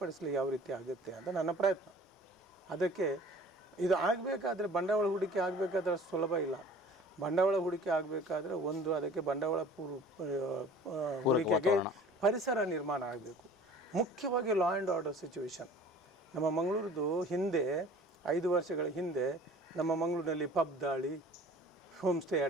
ಯಾವ ರೀತಿ ಆಗುತ್ತೆ ಅಂತ ನನ್ನ ಪ್ರಯತ್ನ. ಅದಕ್ಕೆ ಇದು ಆಗಬೇಕಾದ್ರೆ ಬಂಡವಾಳ ಹೂಡಿಕೆ ಆಗಬೇಕಾದ್ರೆ ಸುಲಭ ಇಲ್ಲ. ಬಂಡವಾಳ ಹೂಡಿಕೆ ಆಗಬೇಕಾದ್ರೆ ಅದಕ್ಕೆ ಬಂಡವಾಳ ಹೂಡಿಕೆಗೆ ಪರಿಸರ ನಿರ್ಮಾಣ ಆಗಬೇಕು. ಮುಖ್ಯವಾಗಿ ಲಾ ಆ್ಯಂಡ್ ಆರ್ಡರ್ ಸಿಚುವೇಶನ್. ನಮ್ಮ ಮಂಗಳೂರದು ಹಿಂದೆ 5 ವರ್ಷಗಳ ಹಿಂದೆ ನಮ್ಮ ಮಂಗಳೂರಿನಲ್ಲಿ ಪಬ್ ದಾಳಿ, ಹೋಮ್ ಸ್ಟೇ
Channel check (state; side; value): normal; both; correlation 0.47